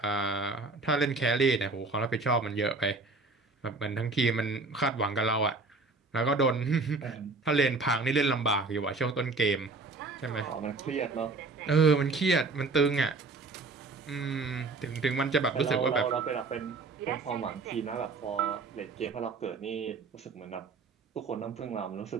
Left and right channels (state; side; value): quieter; left; 3.8 dB